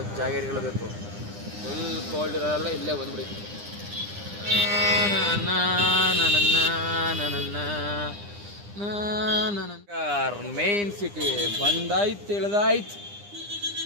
ಜಾಗಗಳು ಬೇಕು, ಫುಲ್ ಕೋಲ್ಡ್ ಇರೋಲ್ಲ ಇಲ್ಲೇ ಬಂದ್ಬಿಡಿ. ಮೇನ್ ಸಿಟಿ ಬಂದಾಯ್ತು, ಇಳ್ದಾಯ್ತು,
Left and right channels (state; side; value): late; left; 9.9 ms